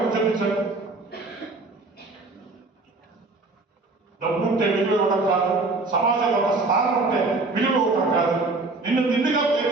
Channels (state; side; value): quieter; left; 3.4 dB